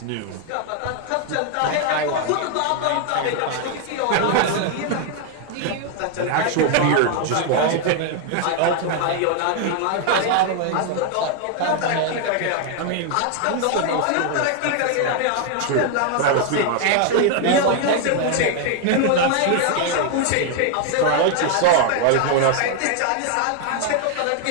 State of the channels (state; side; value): different; both; correlation 0.00